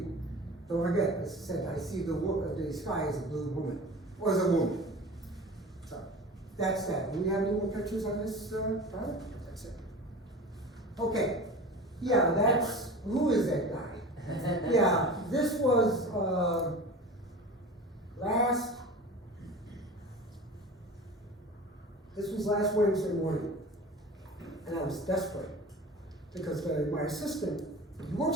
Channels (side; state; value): both; normal; correlation 0.36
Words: Don't forget, as I said, I see the sky as a blue woman, or as a woman. So that's that. Do we have any more pictures on this product? That's it. Okay. Yeah, that's, who is that guy? Yeah, this was last Wednesday morning, and I was desperate because my assistant, he